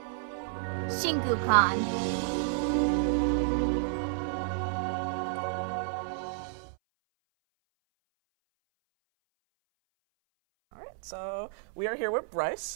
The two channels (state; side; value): silent; left; 57 dB below the other